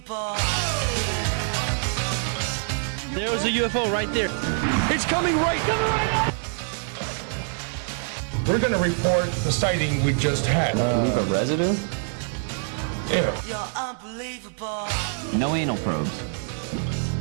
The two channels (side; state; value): left; silent; 59 dB below the other